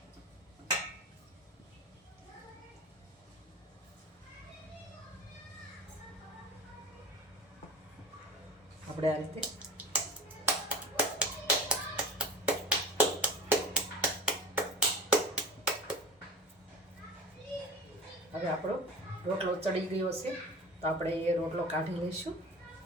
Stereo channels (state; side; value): normal; both; correlation 0.35